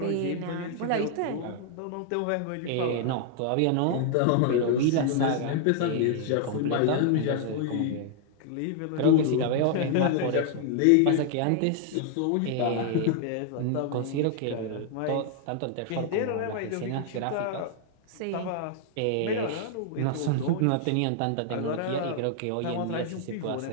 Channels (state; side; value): different; both; correlation 0.00